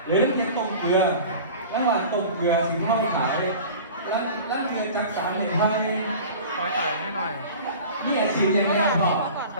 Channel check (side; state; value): both; inverted; correlation -0.39